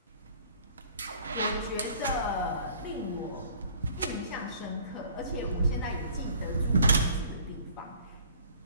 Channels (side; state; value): both; inverted; correlation -0.53